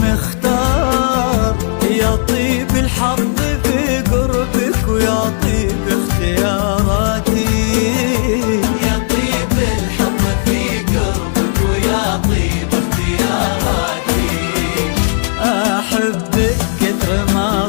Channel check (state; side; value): silent; right; digital silence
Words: يا طيب الحظ في قربك ويا طيب اختياراتي. يا طيب الحظ في قربك ويا طيب اختياراتي. أحبك كثر ما